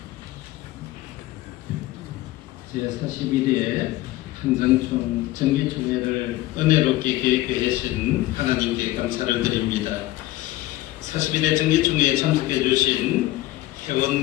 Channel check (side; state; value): right; quieter; 16.7 dB